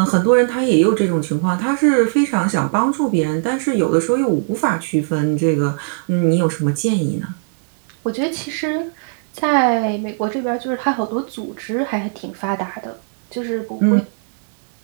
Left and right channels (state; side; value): silent; left; digital silence